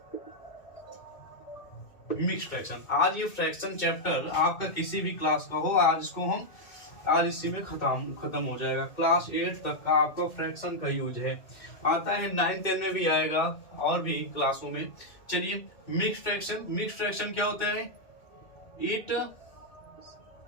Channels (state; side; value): late; right; 2.2 ms